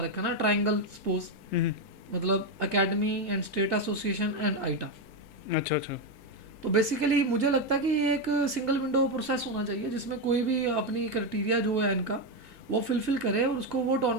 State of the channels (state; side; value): normal; both; correlation 0.07